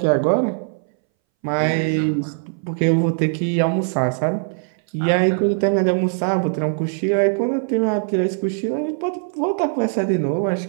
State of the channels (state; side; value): silent; left; 63 dB below the other